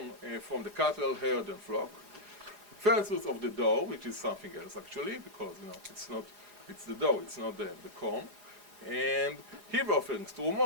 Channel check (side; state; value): left; late; 4.9 ms